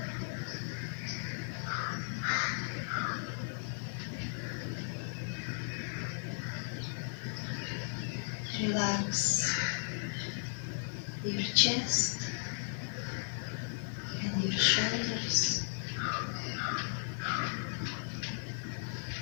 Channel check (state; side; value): silent; right; digital silence